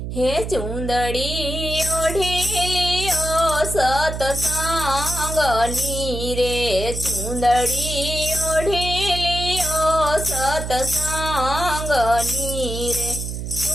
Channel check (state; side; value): noise; right; hum, 6 dB below the sound